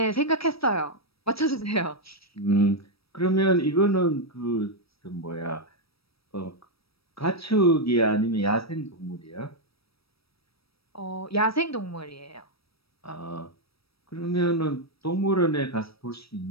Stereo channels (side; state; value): right; late; 0.76 ms